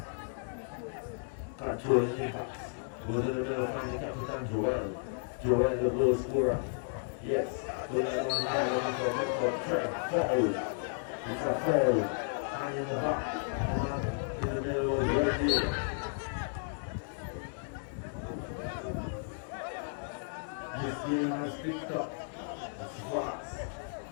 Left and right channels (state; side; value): silent; right; digital silence